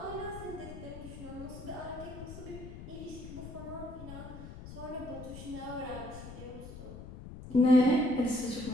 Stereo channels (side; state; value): left; noise; rumble, 12 dB below the sound